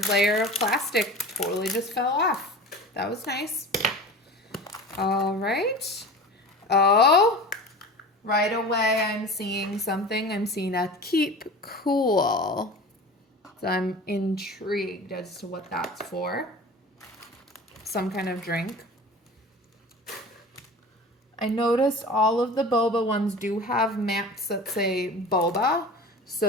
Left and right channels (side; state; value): both; normal; correlation 0.36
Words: layer of plastic totally just fell off. That was nice. All right. Oh, right away I'm seeing something. I'm seeing a keep cool. So I'm intrigued as to what that's for. Some kind of drink. I noticed all of the boba ones do have mats that say boba.